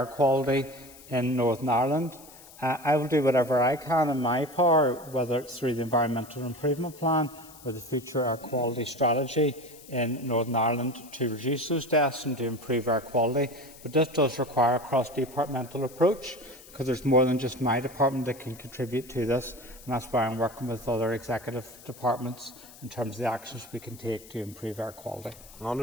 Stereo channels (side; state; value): left; noise; hiss, 20 dB below the sound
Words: quality in Northern Ireland. I will do whatever I can in my power, whether it's through the Environmental Improvement Plan or the Future Air Quality Strategy in Northern Ireland, to reduce those deaths and to improve air quality. But this does require a cross-departmental approach, because there's more than just my department that can contribute to this, and that's why I'm working with other executive departments in terms of the actions we can take to improve air quality.